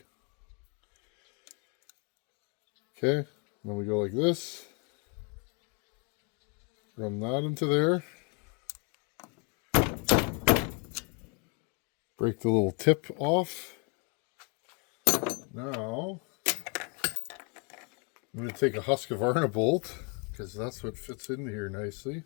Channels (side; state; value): right; quieter; 35.6 dB